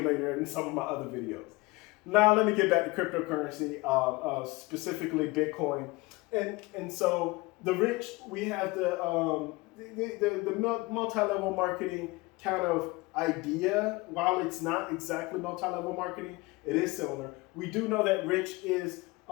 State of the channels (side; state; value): right; quieter; 23.4 dB